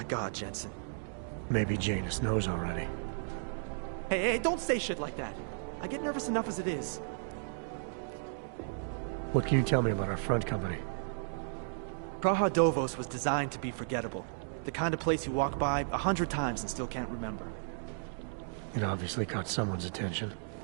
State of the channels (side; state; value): left; silent; digital silence